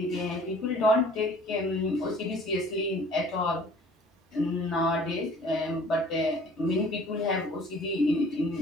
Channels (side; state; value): both; normal; correlation 0.51